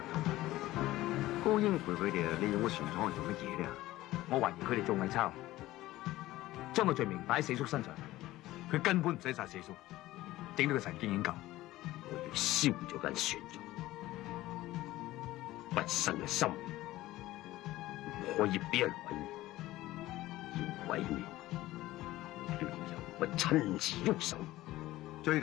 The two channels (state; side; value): quieter; right; 16.6 dB